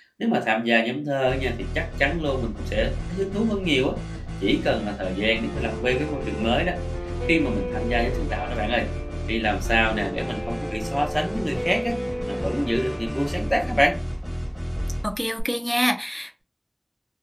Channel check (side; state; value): both; identical; correlation 1.00